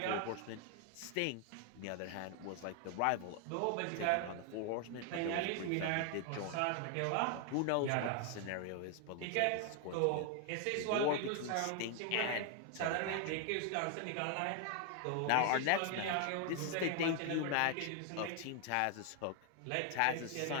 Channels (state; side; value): different; both; correlation 0.00